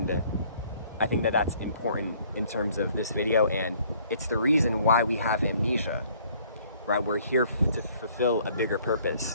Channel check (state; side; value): inverted; both; correlation -0.59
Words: I think that that's important in terms of this video, and it's the reason why we have Amnesia, right? We're here to fulfill a bigger